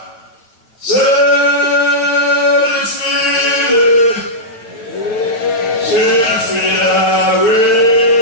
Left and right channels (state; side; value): late; right; 8.9 ms